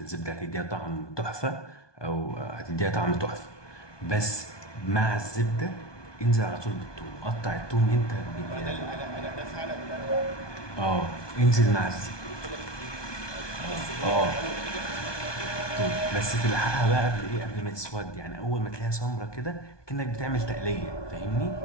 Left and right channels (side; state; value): right; late; 1.2 ms